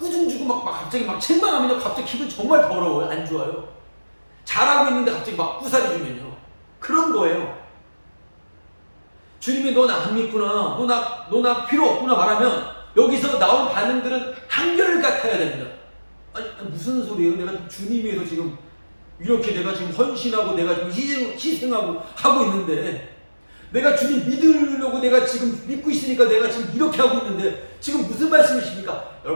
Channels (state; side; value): inverted; both; correlation -1.00